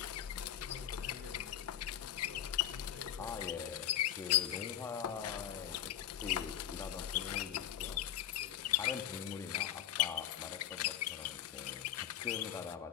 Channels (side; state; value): right; quieter; 11.0 dB